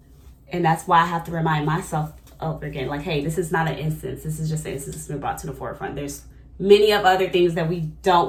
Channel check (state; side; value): identical; both; correlation 1.00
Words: And that's why I have to remind myself over again, like, hey, this is not an instance. This is just an instance that's been brought to the forefront. There's many of other things that we